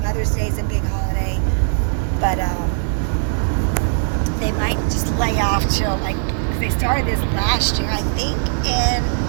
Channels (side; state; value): left; silent; 62 dB below the other